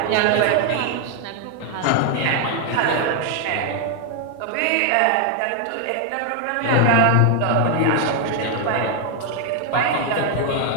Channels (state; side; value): different; both; correlation 0.00